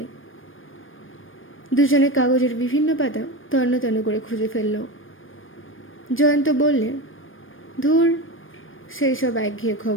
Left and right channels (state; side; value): late; right; 0.59 ms